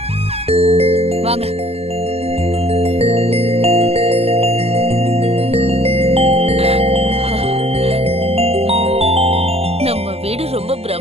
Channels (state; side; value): late; left; 0.29 ms